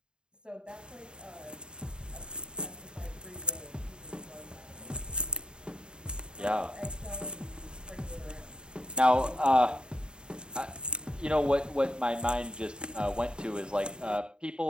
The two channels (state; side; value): late; left; 0.049 ms